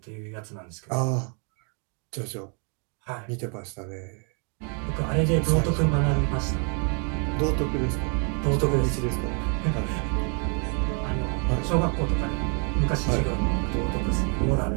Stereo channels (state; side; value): quieter; left; 39.1 dB